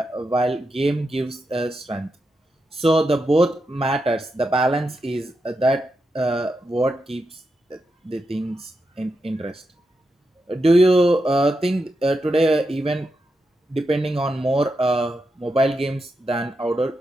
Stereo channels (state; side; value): normal; both; correlation 0.86